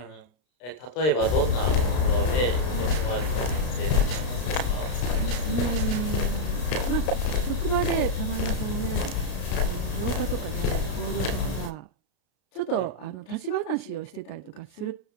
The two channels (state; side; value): late; right; 33 ms